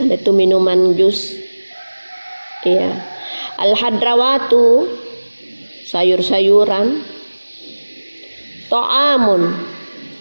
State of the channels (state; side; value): inverted; both; correlation -1.00